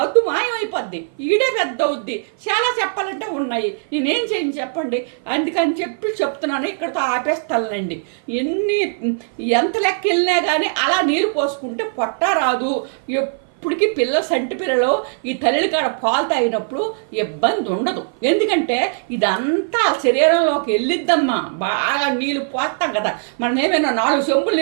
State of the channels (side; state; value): left; silent; 55 dB below the other